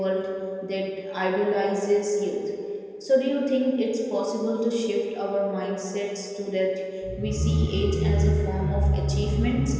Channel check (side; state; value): both; identical; correlation 1.00